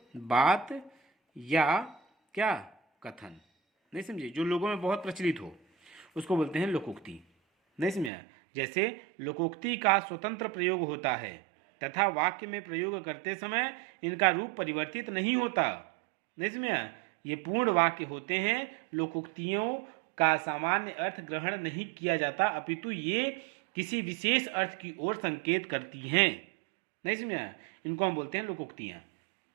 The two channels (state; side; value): drops out; left; at 8.1 s